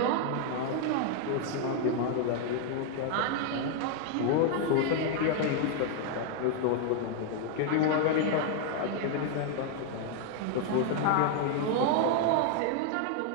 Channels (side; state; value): both; different; correlation 0.00